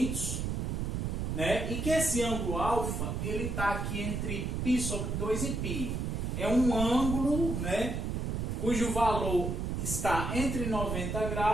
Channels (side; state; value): right; noise; rumble, 2 dB below the sound